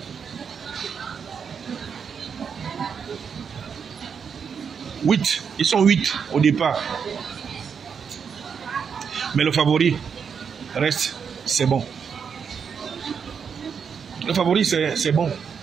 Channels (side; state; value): left; quieter; 6.6 dB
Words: Ils sont 8 au départ. Mais le favori reste, c'est bon. Le favori, c'est bon.